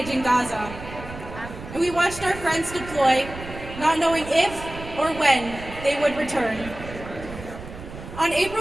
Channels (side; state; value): right; noise; rumble, 13 dB below the sound